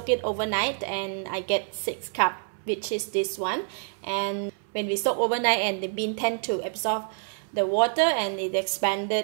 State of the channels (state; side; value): silent; left; 60 dB below the other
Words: it overnight and I get 6 cups, which is this one. And when we soak overnight, and the bean tend to absorb the water and it